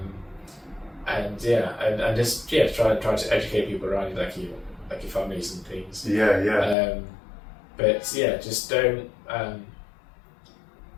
And just try to educate people around you, like your families and things. Yeah. But just don't.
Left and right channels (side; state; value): right; drops out; at 6.8 s